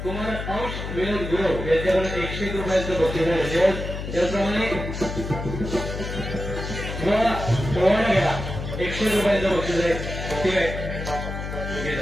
कुमार अंश विनोद गुरव यांच्याकडून 101 रुपयांचं बक्षीस आहे. त्याचप्रमाणे पोवाडा घ्या, 101 रुपयांचं बक्षीस आहे. ठीक आहे, घे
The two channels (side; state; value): left; noise; hum, 6 dB below the sound